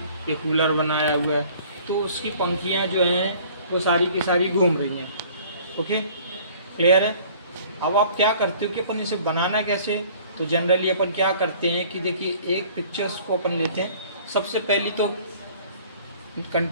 ये कूलर बनाया हुआ है, तो उसकी पंखियाँ जो हैं वो सारी की सारी घूम रही हैं, ओके, क्लियर है। अब आप क्या करते हो कि अपन इसे बनाना कैसे, तो जनरली अपन क्या करते हैं कि देखिए एक पिक्चर्स को अपन लेते हैं, सबसे पहली तो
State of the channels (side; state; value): both; inverted; correlation -0.52